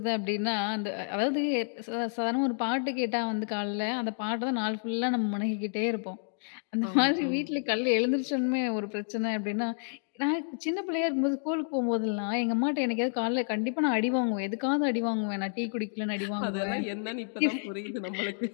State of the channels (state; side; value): silent; right; digital silence